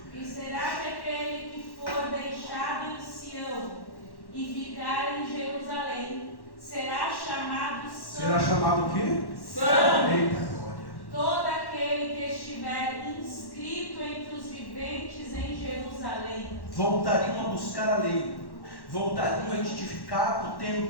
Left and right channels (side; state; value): right; late; 1.1 ms